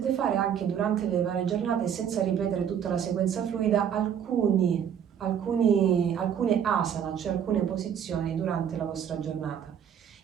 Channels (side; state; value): left; quieter; 8.6 dB